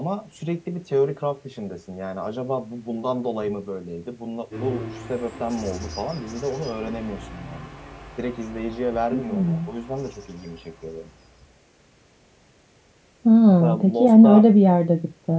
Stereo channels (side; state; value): both; identical; correlation 1.00